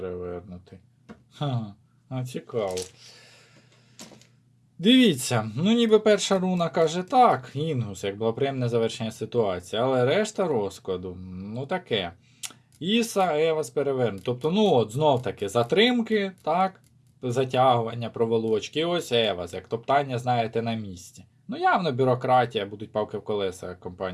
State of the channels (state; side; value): identical; both; correlation 1.00